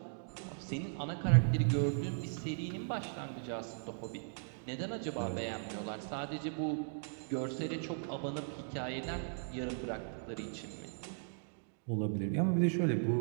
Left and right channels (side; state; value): left; silent; digital silence